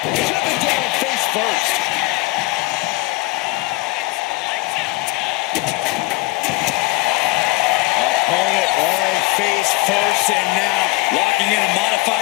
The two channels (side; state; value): right; quieter; 23.4 dB